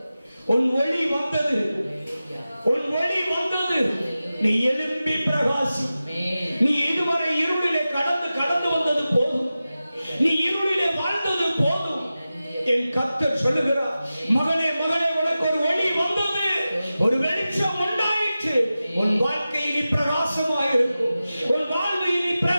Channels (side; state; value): both; inverted; correlation -0.94